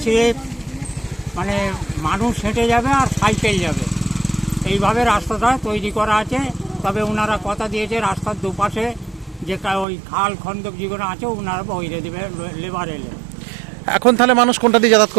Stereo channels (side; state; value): left; drops out; at 9.9 s